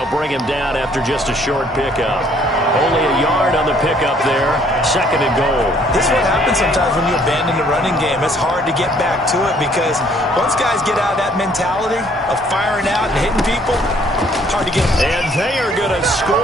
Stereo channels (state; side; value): normal; both; correlation 0.62